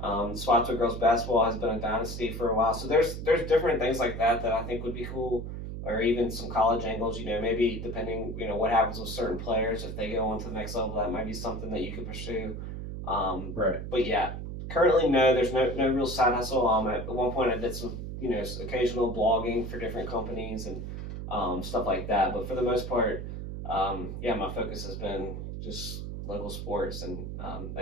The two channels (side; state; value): right; noise; hum, 7 dB below the sound